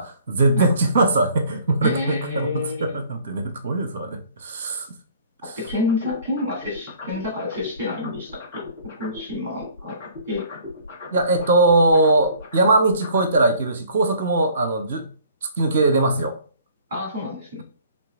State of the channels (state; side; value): inverted; both; correlation -0.55